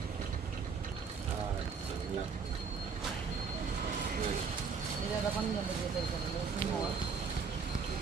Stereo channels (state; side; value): quieter; left; 5.5 dB